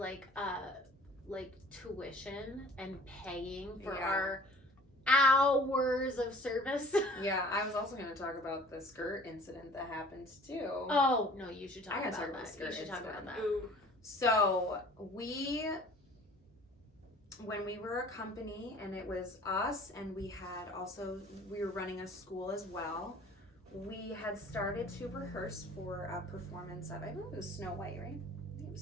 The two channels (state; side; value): normal; both; correlation 0.49